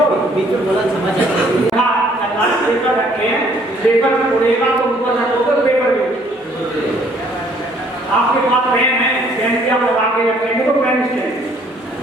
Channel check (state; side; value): normal; both; correlation 0.61